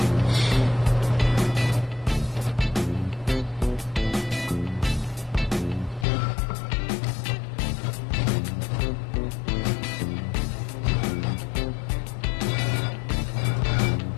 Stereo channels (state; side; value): drops out; right; at 6.1 s